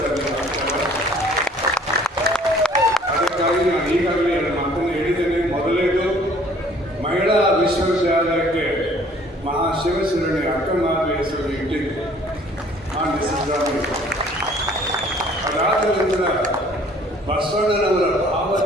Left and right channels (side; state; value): both; normal; correlation 0.55